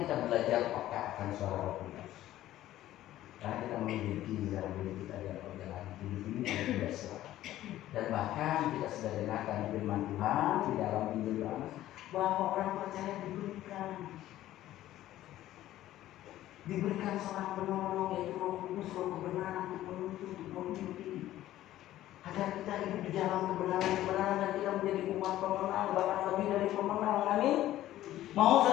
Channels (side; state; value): right; quieter; 14.0 dB